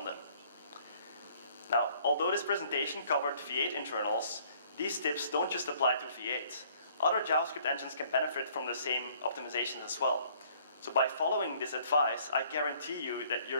them. Now, although this presentation covered V8 internals, these tips don't just apply to V8. Other JavaScript engines can benefit from the same optimizations as well. So by following this advice, I guarantee you that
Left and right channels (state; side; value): inverted; both; correlation -0.59